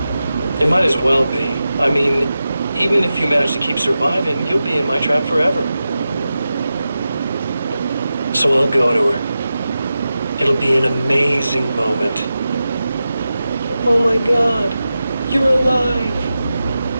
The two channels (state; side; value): inverted; both; correlation -0.92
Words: It might as well be. I mean, even if you manage to keep surviving, you'll be in my trap forever. So I'll go to her. It'll be an amazing moment. Oh my God, you're alive.